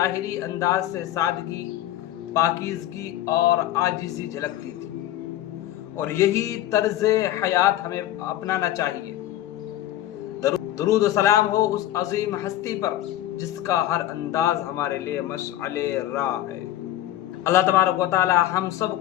انداز سے سادگی، پاکیزگی اور عاجزی جھلکتی تھی، اور یہی طرز حیات ہمیں اپنانا چاہیے۔ درود و سلام ہو اس عظیم ہستی پر جس کا ہر انداز ہمارے لیے مشعل راہ ہے۔ اللہ تبارک و تعالی ہم سب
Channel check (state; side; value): quieter; right; 13.6 dB